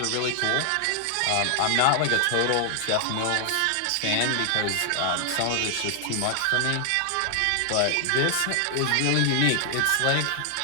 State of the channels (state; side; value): different; both; correlation 0.00